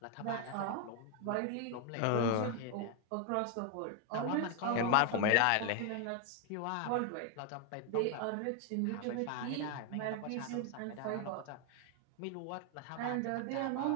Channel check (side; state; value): both; different; correlation 0.01